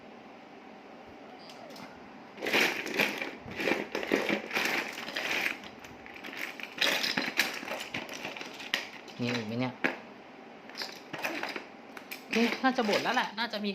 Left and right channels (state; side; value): identical; both; correlation 1.00